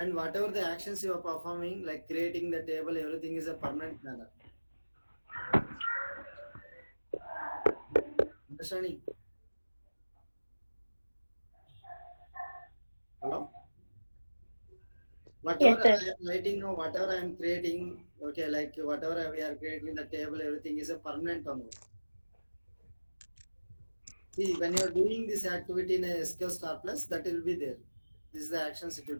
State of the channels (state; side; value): inverted; both; correlation -1.00